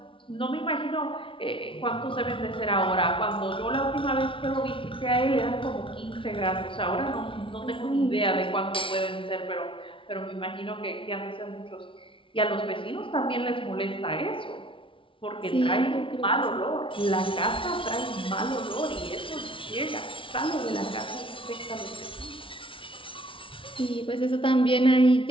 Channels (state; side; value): late; right; 0.25 ms